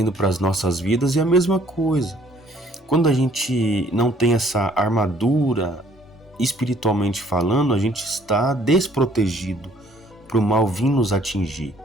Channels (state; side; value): normal; both; correlation 0.59